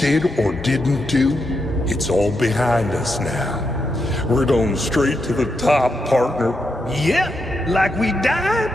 or didn't do, it's all behind us now. We're going straight to the top, partner. Yep, like we died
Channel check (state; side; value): normal; both; correlation 0.83